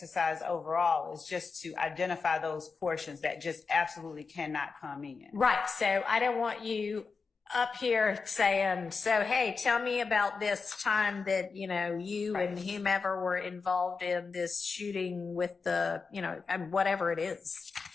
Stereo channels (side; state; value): right; quieter; 4.8 dB